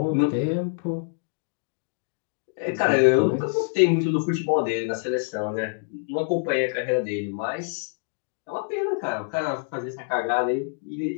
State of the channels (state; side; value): silent; right; digital silence